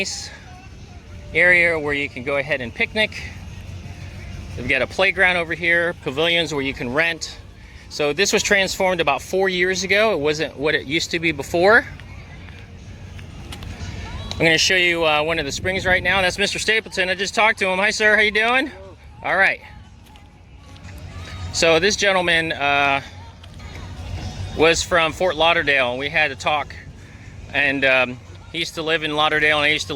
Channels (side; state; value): both; identical; correlation 1.00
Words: area where you can go ahead and picnic. They've got a playground over here, pavilions where you can rent. So this was transformed about 4 years ago. It wasn't what it used to be before. I'm going to show you one of the springs right now. That's Mr. Stapleton. I just talked to him. Hi, sir. How you doing? Hello. All right. So this gentleman was from Fort Lauderdale. We had a talk, and he used to live in Lauderdale, and I used to